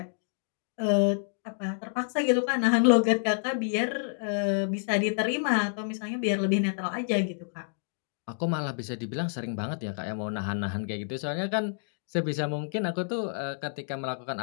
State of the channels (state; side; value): silent; right; digital silence